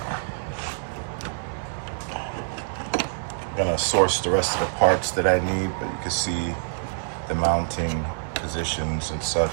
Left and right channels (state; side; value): silent; left; digital silence